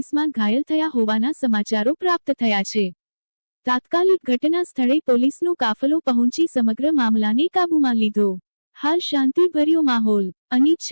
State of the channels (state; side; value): inverted; both; correlation -1.00